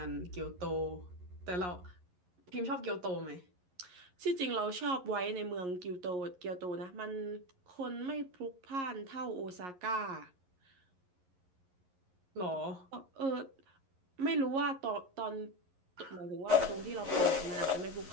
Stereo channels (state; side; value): late; left; 11 ms